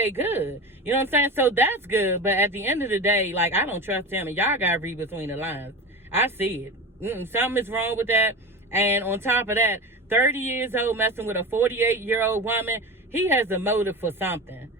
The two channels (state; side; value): normal; both; correlation 0.27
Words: good. You know what I'm saying? So that's good. But at the end of the day, like, I don't trust him, and y'all got to read between the lines. I see it. Something is wrong with that. And on top of that, 30 years old messing with a 48-year-old woman, he has a motive for something.